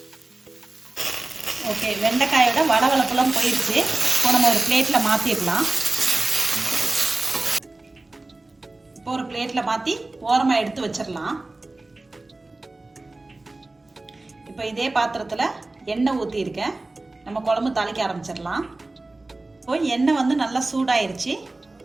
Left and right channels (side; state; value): left; quieter; 3.0 dB